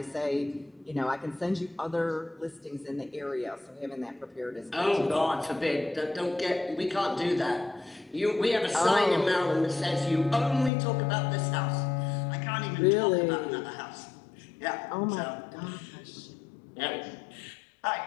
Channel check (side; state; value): right; drops out; at 10.7 s